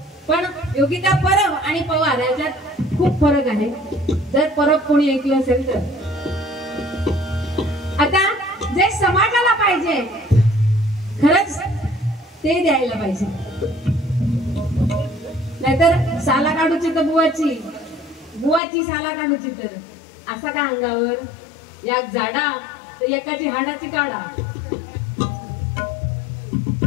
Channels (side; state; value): right; drops out; at 18.6 s